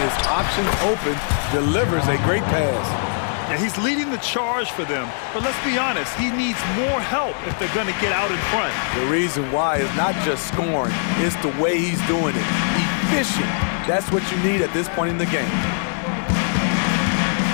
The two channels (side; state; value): right; silent; digital silence